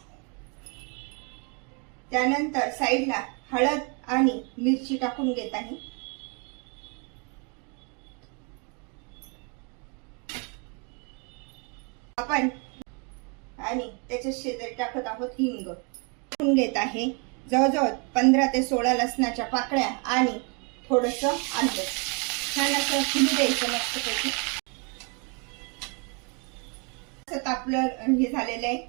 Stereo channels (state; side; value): quieter; left; 34.6 dB